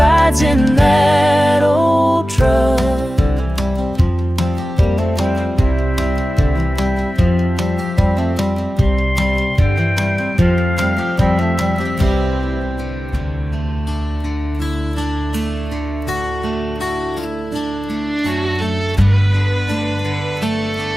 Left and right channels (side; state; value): both; normal; correlation 0.95